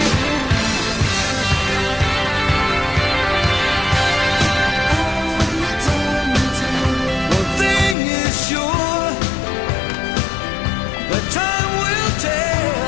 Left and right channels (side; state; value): right; drops out; at 8.0 s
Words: One thing is sure, that time will tell.